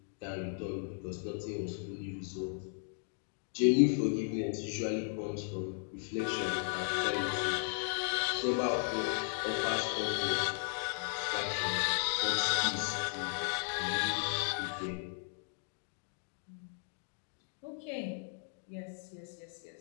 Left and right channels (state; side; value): silent; right; 54 dB below the other